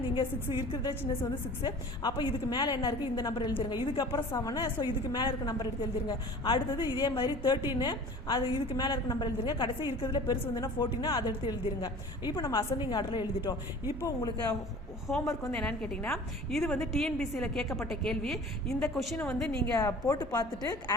நீங்கள் 6 இருக்கிறதே சின்னசு வந்து 6. அப்போ இதுக்கு மேலே என்ன இருக்குது இந்த நம்பர் எழுதிருங்க. இதுக்கப்புறம் 7. ஸோ இதுக்கு மேலே இருக்க நம்பர் எடுத்து எழுதிருங்க. அடுத்தது இதே மாதிரி 13 அது இதுக்கு மேலே இருக்க நம்பர் எழுதிருங்க. கடைசி இருக்கிறதுல பெருசு வந்துன்னா 14 அதை எடுத்து எழுதிருங்க. இப்போ நம்ம அசெண்டிங் ஆர்டரில் எழுதிட்டோம். இப்போ உங்களுக்கு ஹோம்ஒர்க் வந்து என்னன்னு கேட்டிங்கன்னா இது வந்து டிஎன்பிசியில் கேட்கப்பட்ட கேள்வி. இந்த கொஷினை வந்து நீங்கள் போட்டு பார்த்துட்டு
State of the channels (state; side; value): normal; both; correlation 0.42